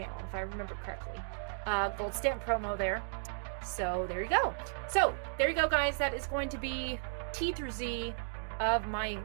if I remember correctly. Gold stamp promo there. So there you go. So there you go, guys. That is going to be T through Z of my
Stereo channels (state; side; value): silent; left; digital silence